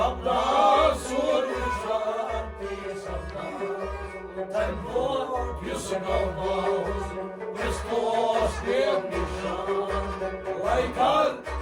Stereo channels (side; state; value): both; identical; correlation 1.00